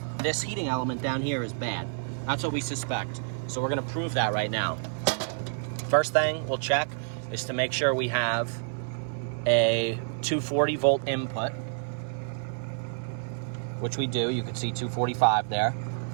this heating element down here is bad. That's what we suspect. So we're gonna prove that right now. First thing we'll check is to make sure we have a 240 volt input, which we do. You can see 245 there.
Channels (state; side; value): silent; left; digital silence